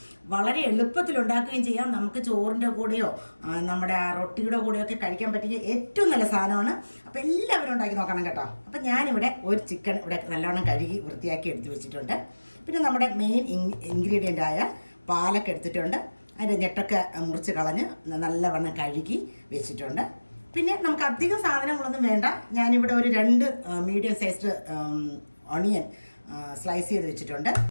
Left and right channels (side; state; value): both; inverted; correlation -1.00